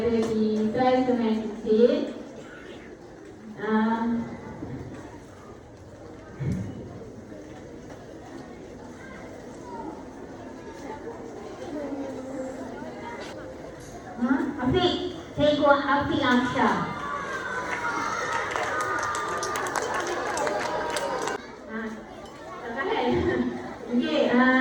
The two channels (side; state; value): both; identical; correlation 1.00